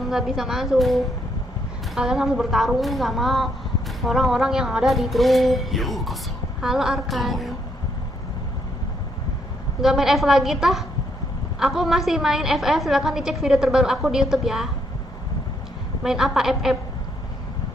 nggak bisa masuk. Kalian harus bertarung sama orang-orang yang ada di grup. ようこそ。 Halo Arkan. Nggak main F lagi tah? Aku masih main FF, silahkan dicek video terbaru aku di YouTube ya. Main apa FF?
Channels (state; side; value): normal; both; correlation 0.73